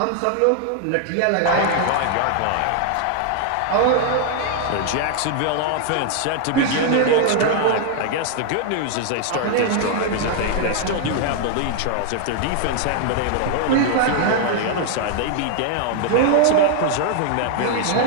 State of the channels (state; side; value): different; both; correlation 0.00